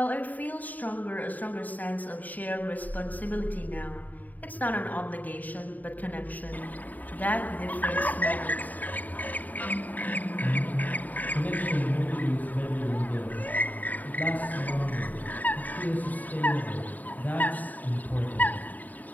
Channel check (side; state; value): right; late; 0.081 ms